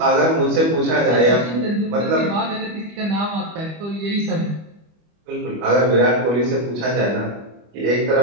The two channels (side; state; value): left; late; 25 ms